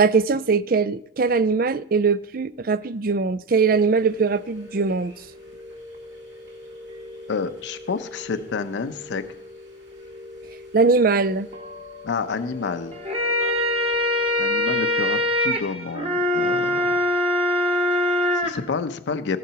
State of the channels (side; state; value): both; normal; correlation 0.19